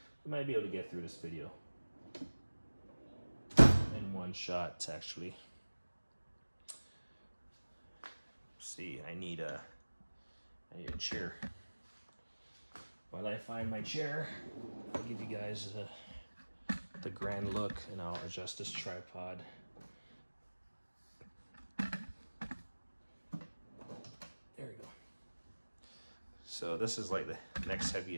We might be able to get through this video in one shot, actually. See, I need a chair. While I find my chair, I'll give you guys the grand look, and I'll adjust this tripod. There we go. So this is like the next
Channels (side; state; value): both; inverted; correlation -1.00